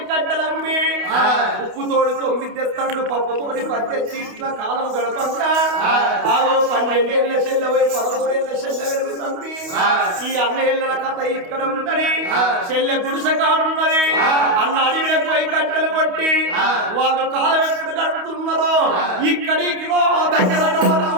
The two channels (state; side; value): late; left; 28 ms